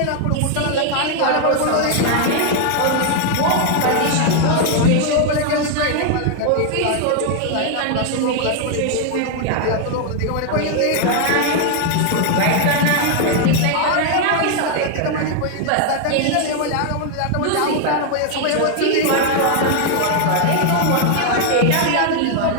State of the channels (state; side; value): different; both; correlation 0.00